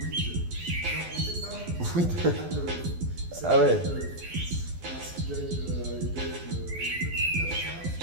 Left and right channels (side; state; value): left; late; 12 ms